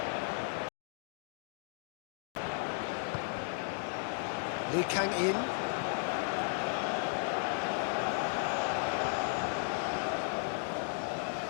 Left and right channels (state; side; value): silent; right; 54 dB below the other